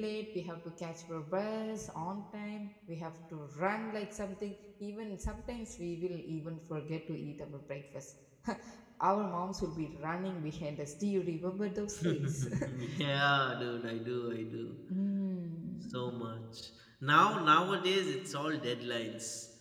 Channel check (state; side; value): identical; both; correlation 1.00